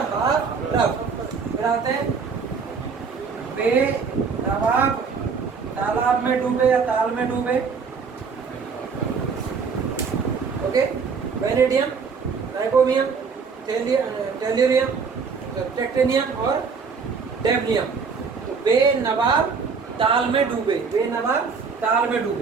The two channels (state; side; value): quieter; left; 5.4 dB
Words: हाफ रफ। फिर आते हैं बेनवाब, तालाब में डूबे या ताल में डूबे, ओके। वेनेडियम, नाइकोमियम, टेल्यूरियम, टेक्टेनियम और डेवनियम। तो बेनवाब ताल में डूबे, बेनवाब ताल में